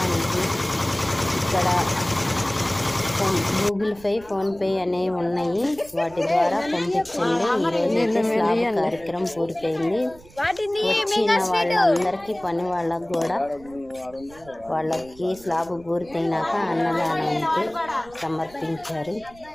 ఇక్కడ గూగుల్ పే, ఫోన్పే అనేవి ఉన్నాయి. వాటి ద్వారా పంపించండి. కార్యక్రమం పూర్తయింది. వచ్చిన వాళ్ళందరికీ పని వాళ్ళకు కూడా వాళ్ళకి స్లాబ్ పూర్తయినాక అన్నదానానికి సమర్పించారు.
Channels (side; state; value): right; noise; rumble, 23 dB below the sound